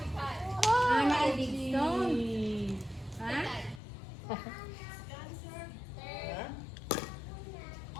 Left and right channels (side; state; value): right; drops out; at 3.8 s